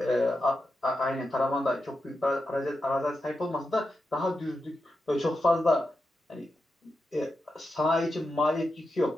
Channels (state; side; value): normal; both; correlation 0.88